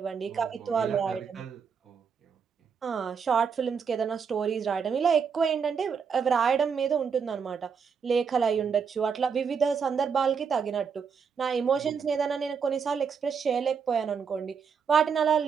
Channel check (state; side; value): quieter; left; 6.3 dB